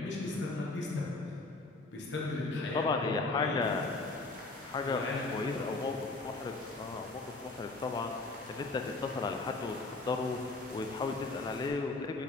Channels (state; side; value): quieter; right; 3.3 dB